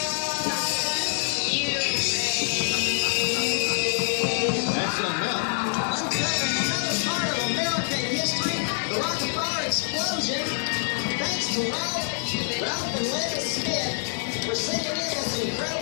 That's something else. Uncovering another part of American history, the Rockefeller explosion. Thanks to Ralph and Linda Smith for sending in this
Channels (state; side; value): silent; right; digital silence